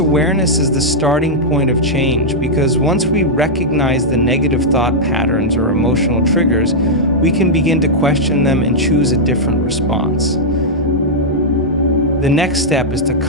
is the starting point of change, because once we recognize the negative thought patterns or emotional triggers, we can begin to question them and choose a different response. The next step is to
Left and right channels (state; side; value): normal; both; correlation -0.07